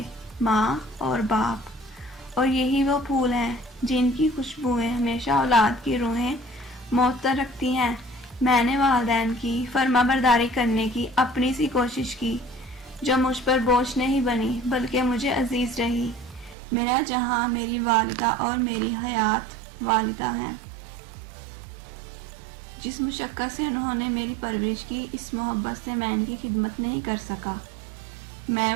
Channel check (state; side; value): drops out; left; at 16.6 s